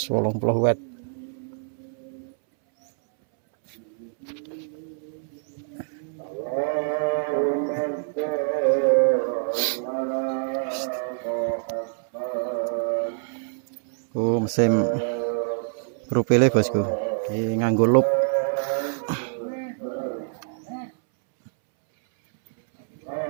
watt. Mesin profil bosku. Iki nganggo loop.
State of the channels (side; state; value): left; silent; 61 dB below the other